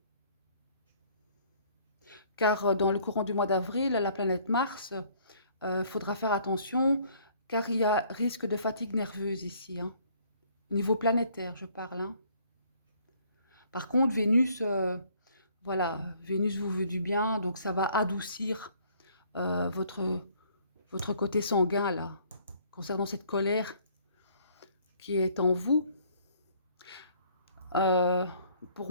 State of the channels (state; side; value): inverted; both; correlation -0.60